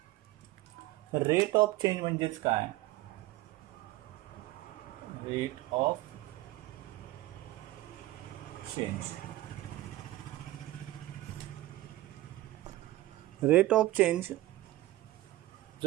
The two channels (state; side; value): quieter; left; 17.0 dB